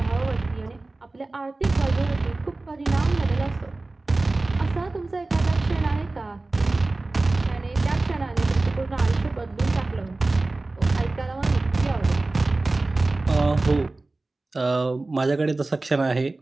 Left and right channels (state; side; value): quieter; left; 3.1 dB